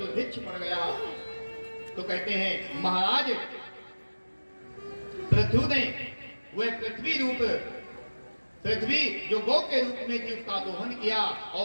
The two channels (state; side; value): inverted; both; correlation -1.00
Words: पड़ गया। तो कहते हैं महाराज पृथु ने वह पृथ्वी रूप पृथ्वी जो गौ के रूप में थी उसका दोहन किया